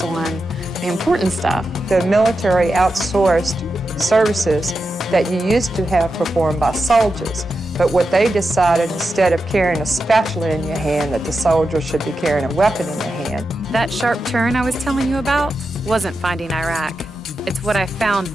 on the important stuff. The military outsourced services that you used to have performed by soldiers. But what they decided, instead of carrying a spatula in your hand, that the soldier should be carrying a weapon in their hand. That sharp turn I was telling you about wasn't finding Iraq. It's what I found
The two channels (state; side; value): normal; both; correlation 0.89